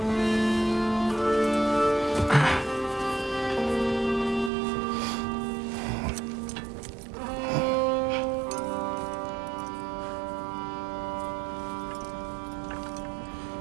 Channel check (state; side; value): drops out; left; at 4.5 s